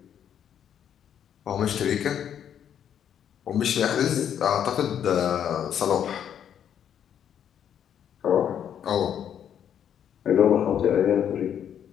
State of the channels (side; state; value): right; quieter; 9.2 dB